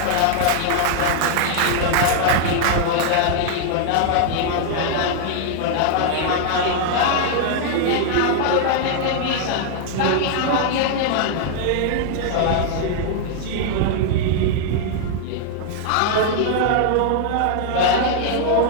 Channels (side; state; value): both; different; correlation 0.00